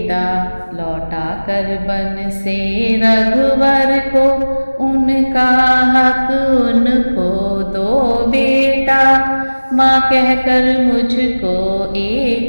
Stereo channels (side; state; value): both; inverted; correlation -1.00